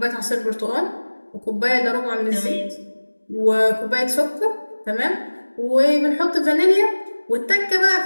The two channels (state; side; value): inverted; both; correlation -1.00